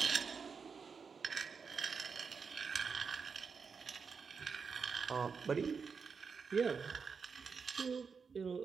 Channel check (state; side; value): quieter; left; 5.6 dB